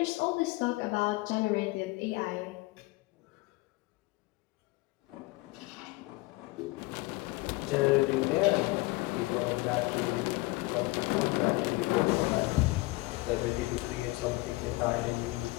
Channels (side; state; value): right; quieter; 22.7 dB